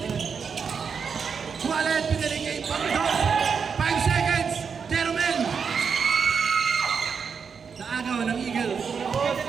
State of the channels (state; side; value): quieter; left; 6.1 dB